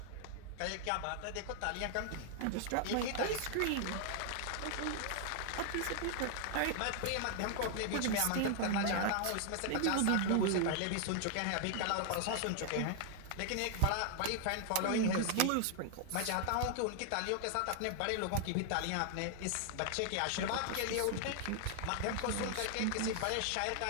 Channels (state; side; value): different; both; correlation 0.00